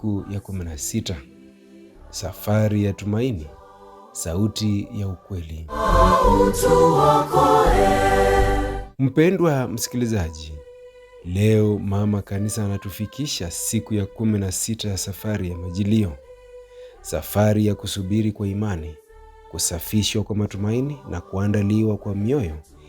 ya 16. Safari ya tumaini, sauti ya ukweli. Mpendwa msikilizaji, leo mama kanisa anatufikisha siku ya 16 ya safari ya Majilio. Safari ya kusubiri kwa imani, kusafishwa kwa matumaini na kuandaliwa kwa mioyo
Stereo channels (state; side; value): identical; both; correlation 1.00